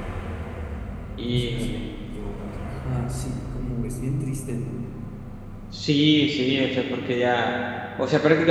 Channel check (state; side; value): identical; both; correlation 1.00